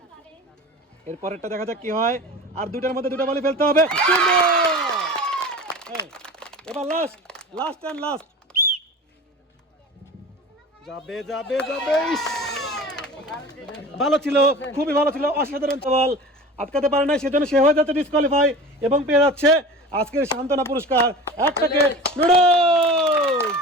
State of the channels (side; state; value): both; normal; correlation 0.36